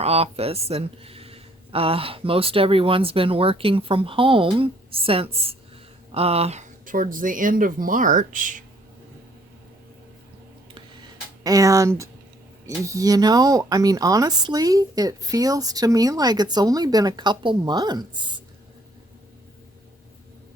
office, and most everyone's been working from home since towards the end of March. And you know, I mean, honestly, it feels to me like it's only been a couple months.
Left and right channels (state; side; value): normal; both; correlation 0.64